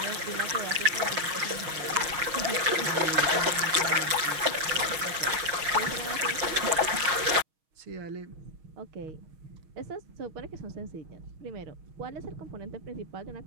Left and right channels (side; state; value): left; late; 6.3 ms